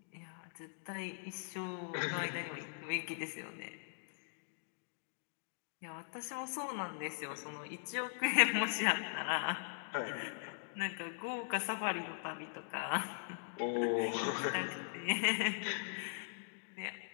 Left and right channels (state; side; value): silent; right; digital silence